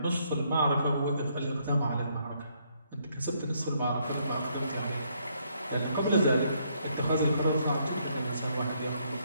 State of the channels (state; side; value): inverted; both; correlation -0.71